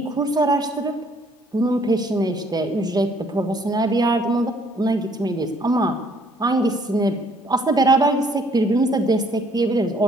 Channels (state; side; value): normal; both; correlation 0.63